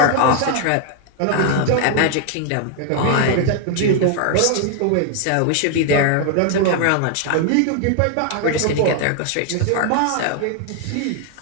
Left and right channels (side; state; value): both; different; correlation 0.00